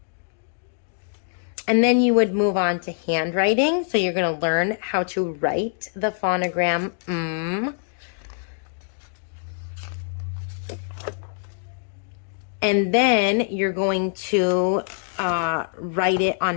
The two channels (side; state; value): right; silent; digital silence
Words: you would move on to handwriting. So you're going to learn how to write the phonogram And then you're going to write it